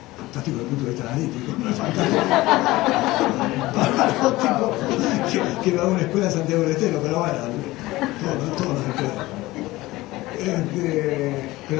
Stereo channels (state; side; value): quieter; right; 18.9 dB